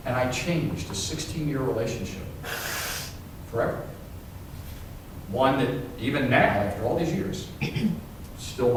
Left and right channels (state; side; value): identical; both; correlation 1.00